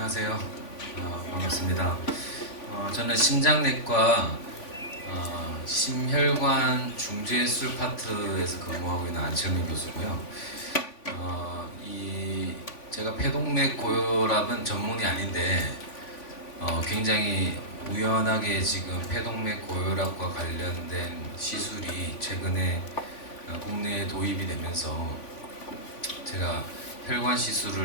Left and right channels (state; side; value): late; right; 3.5 ms